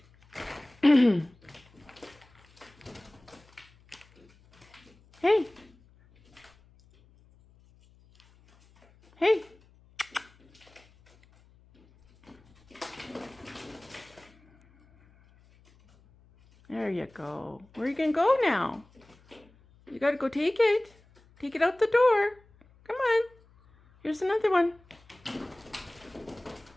Hey. Hey. There you go. Where are you going to go now? You got to go take it. Take it out the door. Come on. Here's another one.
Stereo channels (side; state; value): left; noise; hum, 29 dB below the sound